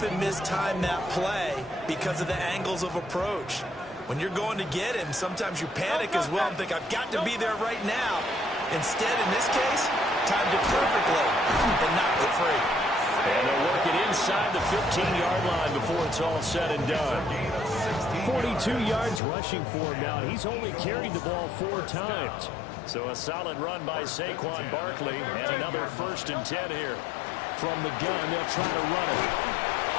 mistime that play because of the angles of approach. When you're going to get him, sometimes you panic as well and think, I've got to be there right now. Instead, in this case, timed it perfectly and knocked it free. And they'll work it inside the 15-yard line before it's all said and done. 42 yards rushing for him now. He's only carried the ball 4 times. So a solid run by Saquon Barkley and another 1st and 10 here. From the gun, they'll try to run it.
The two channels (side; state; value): right; drops out; at 19.2 s